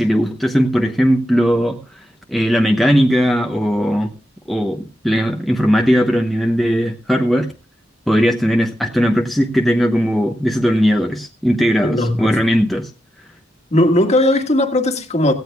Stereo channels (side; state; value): both; normal; correlation 0.87